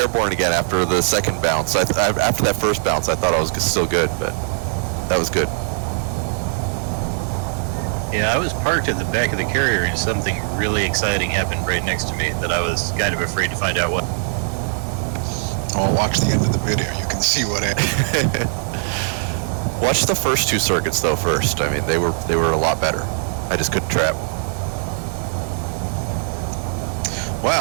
again after the second bounce. After that first bounce, I thought I was still good, but that was good. Yeah, I was parked at the back of the carrier and something really exciting happened right next to me that I was kind of afraid to find out what. Oh, watch the end of the video. You can see what happened. Watch the first 2 circuits though first. I mean, they were a lot better. I just couldn't trap.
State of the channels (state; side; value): silent; left; digital silence